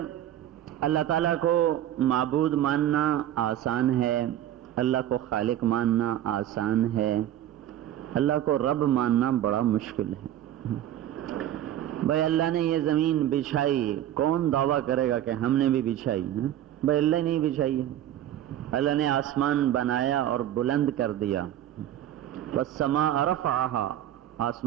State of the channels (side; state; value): left; quieter; 12.0 dB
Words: اللہ تعالیٰ کو معبود ماننا آسان ہے، اللہ کو خالق ماننا آسان ہے، اللہ کو رب ماننا بڑا مشکل ہے۔ بھائی اللہ نے یہ زمین بچھائی، کون دعویٰ کرے گا کہ ہم نے بھی بچھائی ہے؟ بھائی اللہ نے بچھائی ہے۔ اللہ نے آسمان بنایا اور بلند کر دیا، والسماء رفعها،